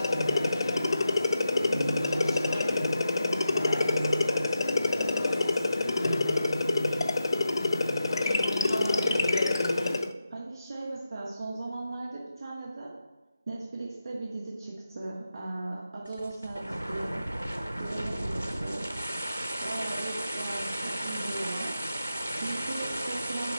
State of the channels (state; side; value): inverted; both; correlation -0.88